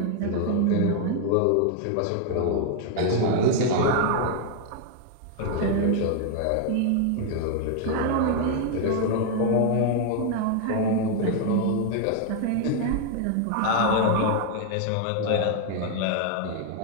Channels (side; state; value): both; different; correlation 0.00